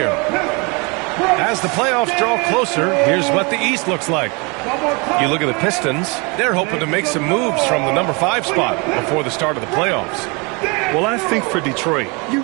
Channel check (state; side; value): quieter; left; 29.8 dB